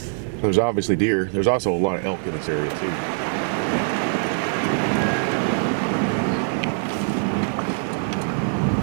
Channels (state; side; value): silent; left; 63 dB below the other